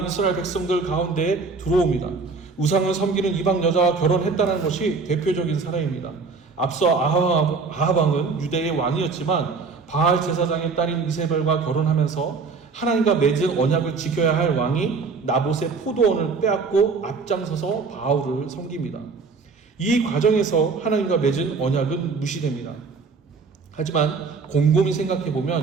이스라엘 백성들 가운데 들어옵니다. 우상을 섬기는 이방 여자와 결혼했다는 것이 대표적인 사례입니다. 앞서 아합 왕은 유대의 왕이었지만 바알 제사장의 딸인 이세벨과 결혼하면서 하나님과 맺은 언약을 지켜야 할 왕이 나봇의 포도원을 빼앗고 앞장서서 바알을 섬깁니다. 이 과정에서 하나님과 맺은 언약은 무시됩니다. 하지만 곰곰이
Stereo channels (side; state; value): left; quieter; 4.6 dB